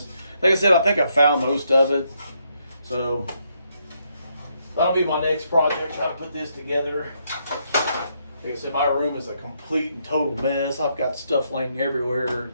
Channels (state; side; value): inverted; both; correlation -0.76